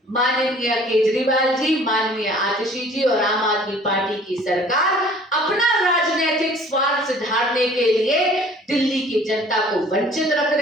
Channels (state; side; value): normal; both; correlation 0.52